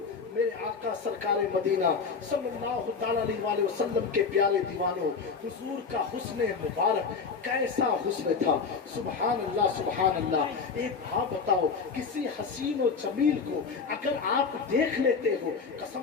मेरे आका सरकार मदीना सल्लल्लाहु ताला अलैहि वसल्लम के प्यारे दीवानों, हुजूर का हुस्न मुबारक कैसा हुस्न था। सुभान अल्लाह सुभान अल्लाह। एक बात बताओ, किसी हसीन और जमील को अगर आप देख लेते हो,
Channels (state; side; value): quieter; right; 5.2 dB